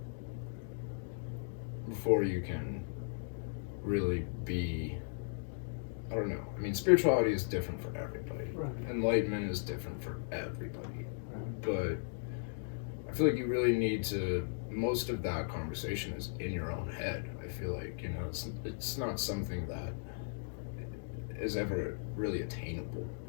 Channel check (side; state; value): right; silent; digital silence